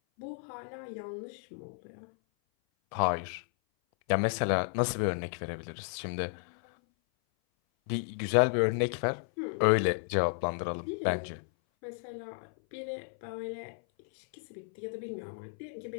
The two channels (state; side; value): silent; right; 56 dB below the other